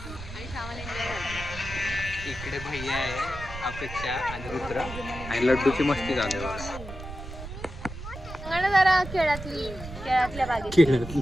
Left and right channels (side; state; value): right; noise; rumble, 11 dB below the sound